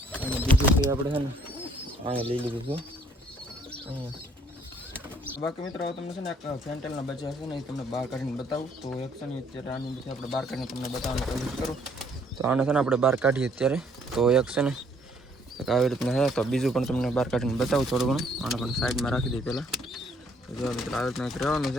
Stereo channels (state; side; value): normal; both; correlation 0.65